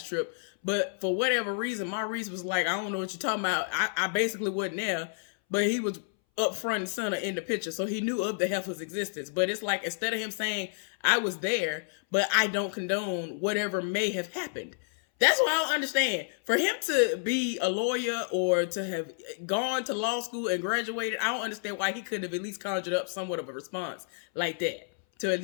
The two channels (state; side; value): silent; right; 58 dB below the other